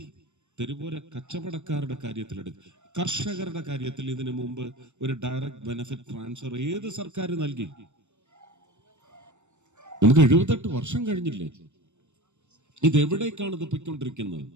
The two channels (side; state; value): left; late; 0.84 ms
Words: തെരുവോര കച്ചവടക്കാരുടെ കാര്യത്തിലെടുക്കും. കർഷകരുടെ കാര്യത്തിൽ ഇതിനു മുമ്പ് ഒരു ഡയറക്റ്റ് ബെനിഫിറ്റ് ട്രാൻസ്ഫർ ഏത് സർക്കാർ നൽകി? നമുക്ക് 78 വർഷം കഴിഞ്ഞില്ലേ? ഇതെവിടേക്കാണ് ഇത് പൊയ്ക്കൊണ്ടിരിക്കുന്നത്?